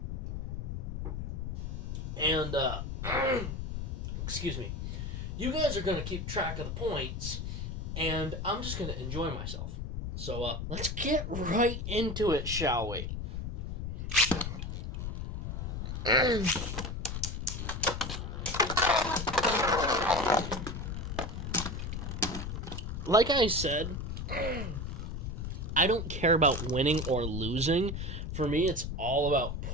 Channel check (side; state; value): left; noise; rumble, 4 dB below the sound